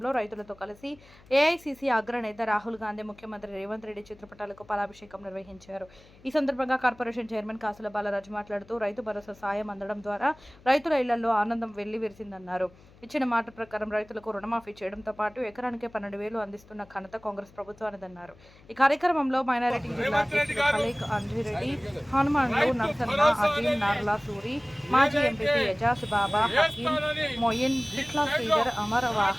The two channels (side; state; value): left; noise; hum, 25 dB below the sound